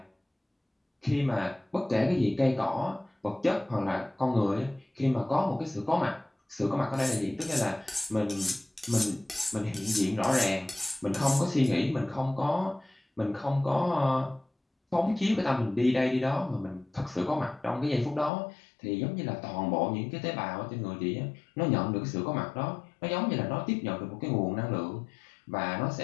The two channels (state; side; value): drops out; right; at 18.3 s